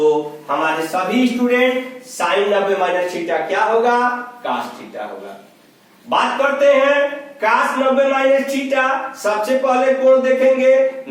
हमारे सभी स्टूडेंट साइन 90 माइनस थीटा क्या होगा, कास थीटा होगा। बात करते हैं कास 90 माइनस थीटा, सबसे पहले कोण देखेंगे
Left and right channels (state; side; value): identical; both; correlation 1.00